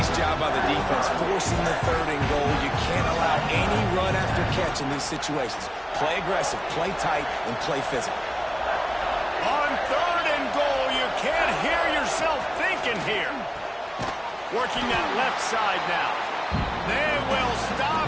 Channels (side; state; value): both; identical; correlation 1.00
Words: job by the defense, forcing the 3rd and goal. You can't allow any run after catch in these situations. Play aggressive, play tight, and play physical. On 3rd and goal, you can't hear yourself thinking here. Working that left side now. They will